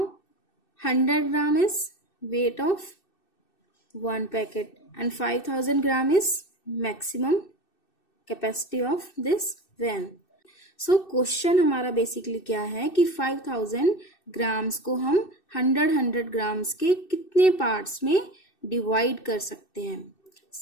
100 gram is weight of 1 packet and 5000 gram is maximum capacity of this van. So question हमारा बेसिकली क्या है कि 5000 ग्राम्स को हम 100 ग्राम्स के कितने पार्ट्स में डिवाइड कर सकते हैं.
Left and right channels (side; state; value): right; late; 2.6 ms